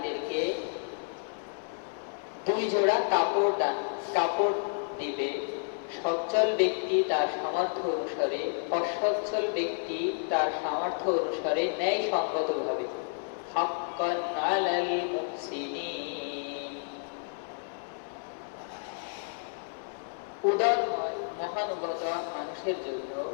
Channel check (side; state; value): right; silent; 57 dB below the other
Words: 2 জোড়া কাপড় দিবে। সচ্ছল ব্যক্তি তার সামর্থ্য অনুসারে, অসচ্ছল ব্যক্তি তার সামর্থ্য অনুসারে ন্যায়সঙ্গতভাবে। হাক্কান আলাল মুহসিনিন। উদার মহানুভবতা মানুষের জন্য